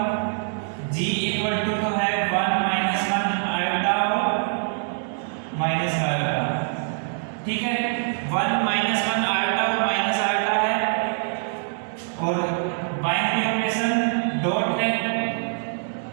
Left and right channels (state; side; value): silent; left; digital silence